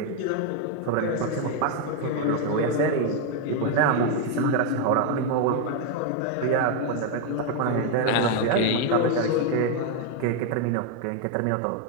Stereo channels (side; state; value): both; different; correlation 0.01